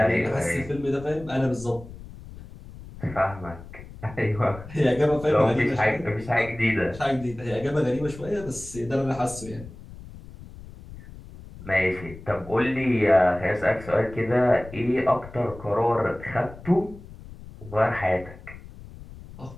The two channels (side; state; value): left; noise; rumble, 16 dB below the sound